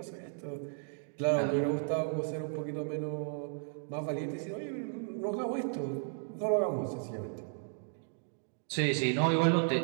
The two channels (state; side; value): silent; left; digital silence